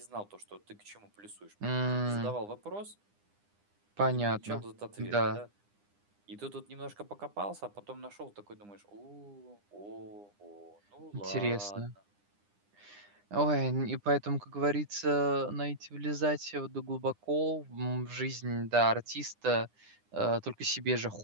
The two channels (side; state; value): left; late; 9.9 ms